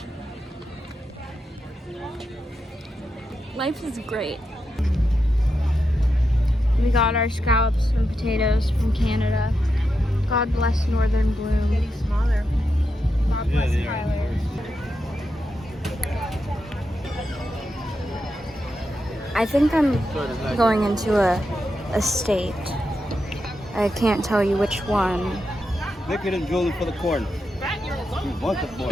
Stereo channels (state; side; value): normal; both; correlation 0.86